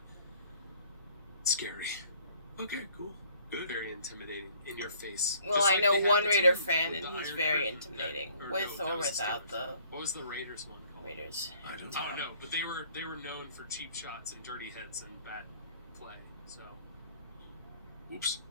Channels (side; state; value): both; inverted; correlation -0.58